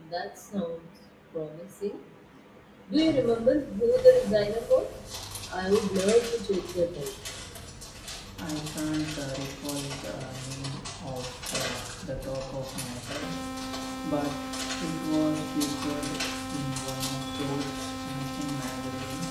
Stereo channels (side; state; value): both; identical; correlation 1.00